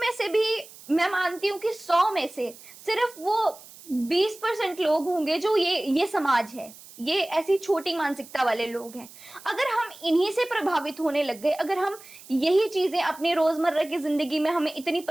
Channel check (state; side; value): noise; right; hiss, 20 dB below the sound